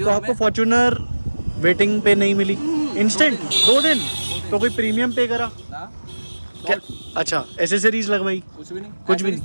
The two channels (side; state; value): both; inverted; correlation -1.00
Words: तो आपको फॉर्च्यूनर वेटिंग पे नहीं मिली, इंस्टेंट 2 दिन, तो कोई प्रीमियम पे करा क्या? अच्छा, एसेसरीज लगवाई? कुछ भी नहीं, कुछ भी नहीं